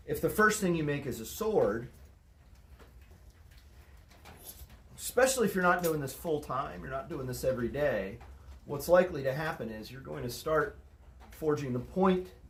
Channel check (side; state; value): both; identical; correlation 1.00